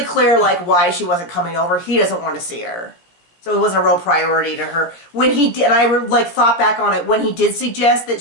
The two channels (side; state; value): right; late; 17 ms